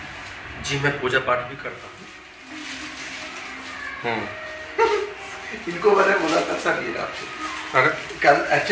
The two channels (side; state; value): both; identical; correlation 1.00